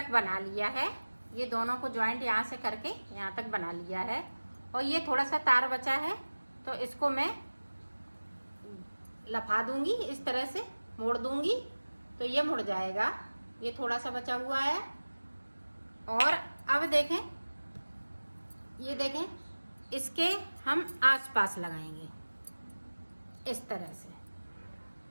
बना लिया है, ये दोनों को ज्वाइंट यहाँ से करके यहाँ तक बना लिया है। और ये थोड़ा सा तार बचा है तो इसको मैं लफा दूंगी, इस तरह से मोड़ दूंगी तो ये मुड़ जाएगा। ये थोड़ा सा बचा हुआ है। और अब देखें, ये देखें, इसके हम आसपास लगाएंगे इस तरह से।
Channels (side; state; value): both; inverted; correlation -1.00